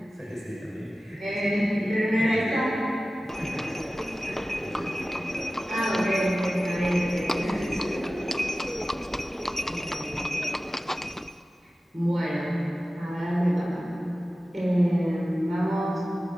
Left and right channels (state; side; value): normal; both; correlation 0.96